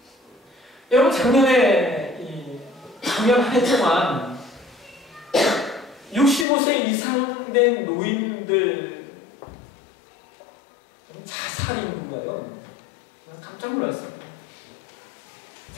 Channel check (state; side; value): drops out; right; at 6.5 s